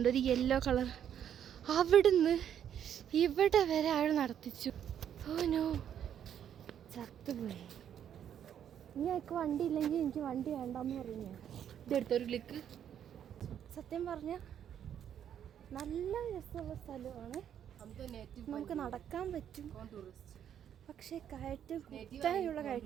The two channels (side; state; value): left; quieter; 9.4 dB